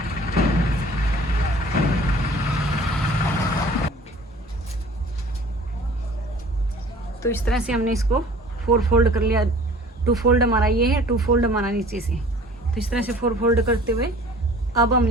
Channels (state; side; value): normal; both; correlation 0.48